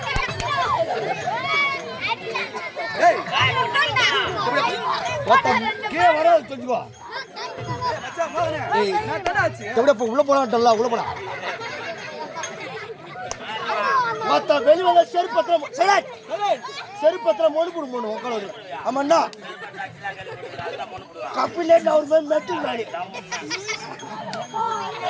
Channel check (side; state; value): both; identical; correlation 1.00